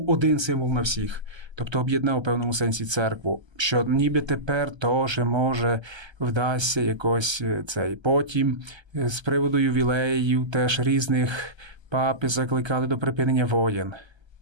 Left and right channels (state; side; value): late; left; 1.3 ms